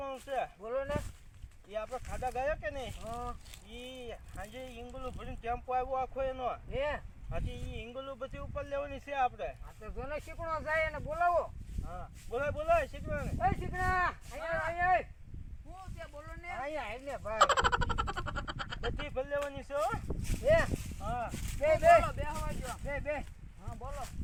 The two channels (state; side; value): identical; both; correlation 1.00